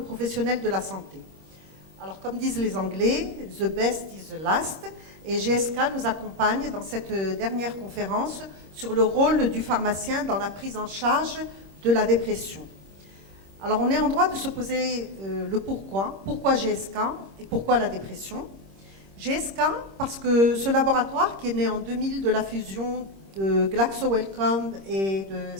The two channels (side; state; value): left; late; 26 ms